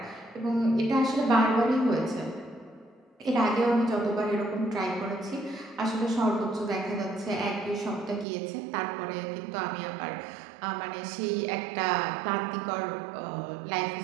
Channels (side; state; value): left; drops out; at 8.2 s